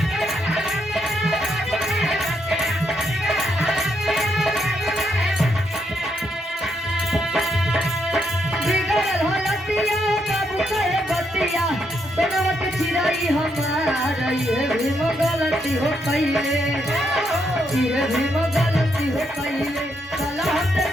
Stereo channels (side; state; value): both; normal; correlation 0.78